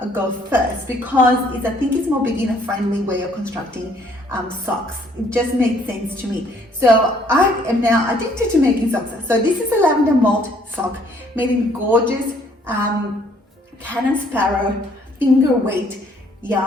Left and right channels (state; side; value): normal; both; correlation 0.63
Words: go first, because I think it's more beginner friendly way of constructing socks. It just makes sense to me. So I am now addicted to making socks. So this is a Lavender Malt sock made in gorgeous Cannon Sparrow finger weight